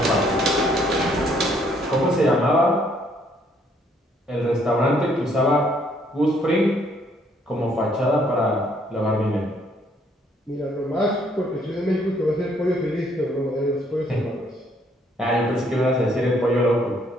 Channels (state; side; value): normal; both; correlation 0.66